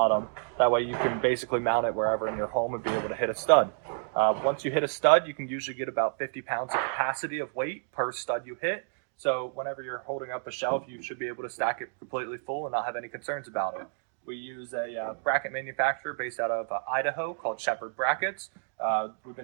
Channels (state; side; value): silent; left; digital silence